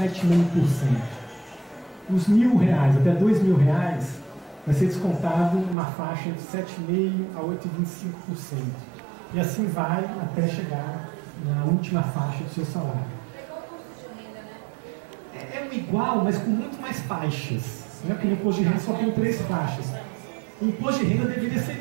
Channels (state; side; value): drops out; left; at 5.8 s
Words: Os R$1.000 até R$2.000 vai ser descontado uma faixa de 7,5% a 8,25%. E assim vai até chegar na última faixa do seu salário. É igual, mas com muito mais faixas. Né? Porque no imposto de renda só tem 3 faixas. O imposto de renda deveria